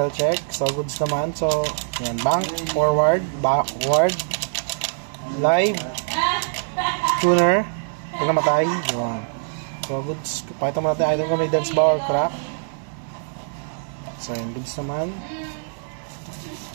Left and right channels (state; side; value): silent; left; digital silence